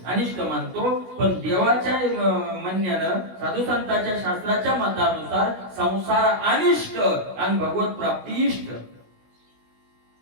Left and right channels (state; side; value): late; left; 16 ms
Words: अनिष्ट मानतो. पण देवाच्या म्हणण्यानं, साधू संतांच्या शास्त्राच्या मतानुसार संसार अनिष्ट आणि भगवत प्राप्ती इष्ट.